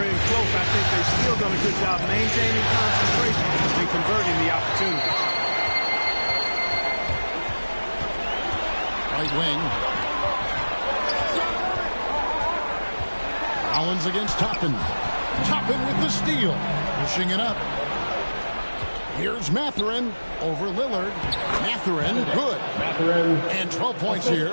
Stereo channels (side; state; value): both; inverted; correlation -1.00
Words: in close, I think they've still done a good job maintaining concentration and converting the opportunities. Right wing. Rollins against Toppin. Toppin with the steal. Pushing it up. Here's Mathurin over Lillard. Mathurin, good. And 12 points here